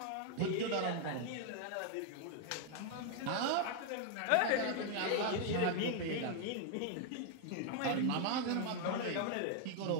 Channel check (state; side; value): different; both; correlation 0.00